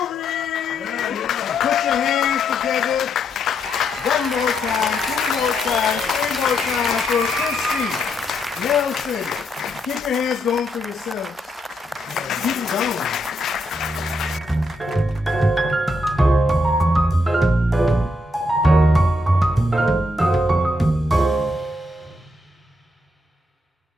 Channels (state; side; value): normal; both; correlation 0.78